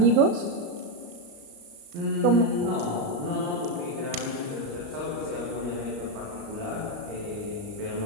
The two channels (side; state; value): left; late; 35 ms